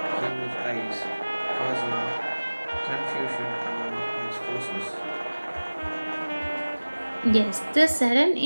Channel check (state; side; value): inverted; both; correlation -1.00